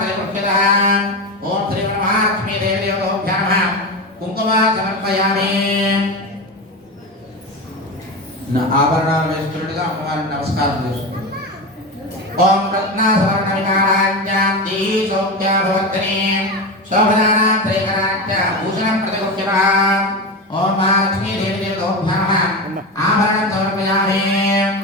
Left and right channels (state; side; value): normal; both; correlation 0.21